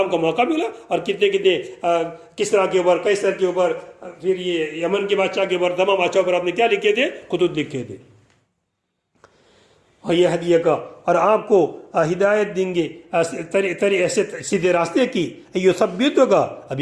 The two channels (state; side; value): identical; both; correlation 1.00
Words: کا موقع ملا. اور کتنے کس طرح کے اوپر، کس طرح کے اوپر، پھر یہ یمن کے بادشاہ کے اوپر، تمام بادشاہوں پر آپ نے کیا لکھے تھے، خطوط لکھے تھے. اور یہ ہدیہ کا، اور آپ کو ہدایت دیں گے ایسے سیدھے راستے کی. یہ سب بھی تو کا، اب